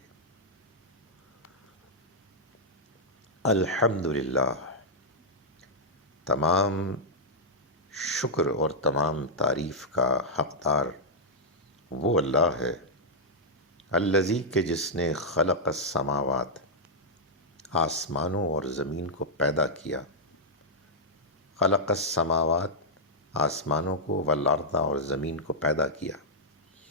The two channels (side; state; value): both; normal; correlation -0.07